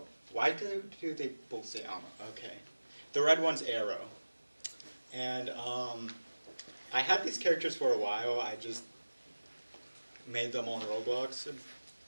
Why do they both say Amo? Okay. The red one's Arrow. And I had these characters for a while. I just made them on Roblox a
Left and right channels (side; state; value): both; inverted; correlation -1.00